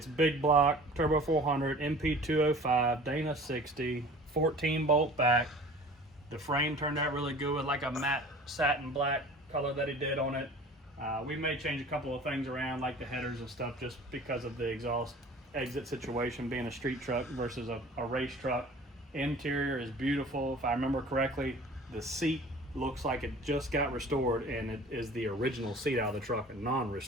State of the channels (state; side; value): normal; both; correlation 0.44